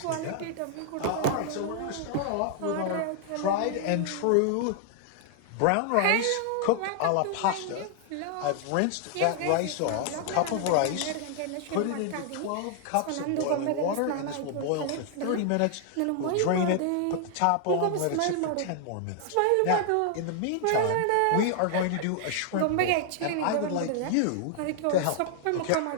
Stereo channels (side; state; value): both; different; correlation 0.00